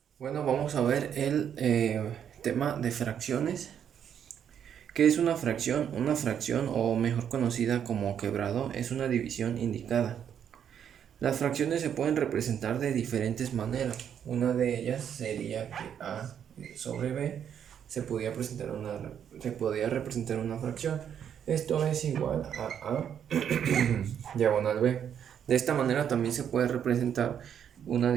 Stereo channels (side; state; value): left; quieter; 8.7 dB